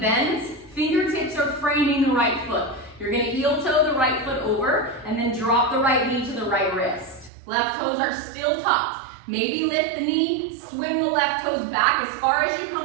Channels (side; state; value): left; drops out; at 7.3 s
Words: Fingertips are framing the right foot. You're gonna heel toe the right foot over and then drop the right knee to the right wrist. Left toes are still tucked. Maybe lift the knee, swing the left toes back as far as you